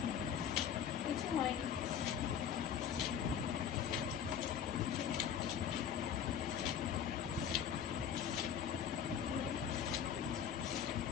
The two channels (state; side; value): quieter; right; 8.4 dB